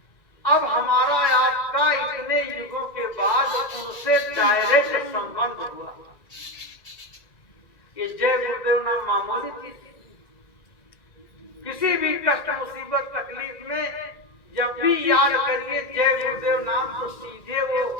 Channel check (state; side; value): late; right; 2.0 ms